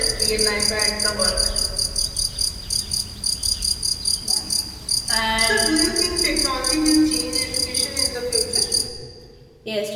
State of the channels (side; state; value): both; identical; correlation 1.00